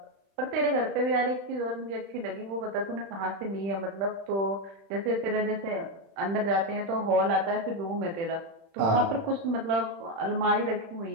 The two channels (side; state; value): left; late; 36 ms